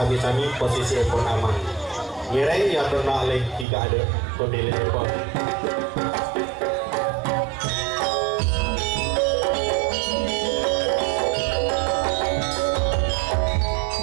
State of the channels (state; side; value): drops out; left; at 3.7 s